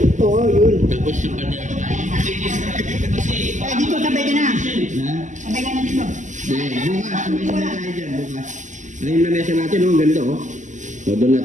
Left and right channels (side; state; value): left; late; 0.36 ms